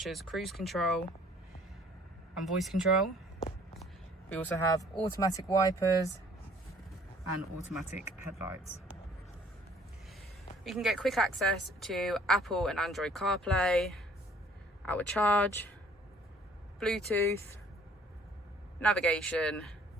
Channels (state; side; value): normal; both; correlation 0.57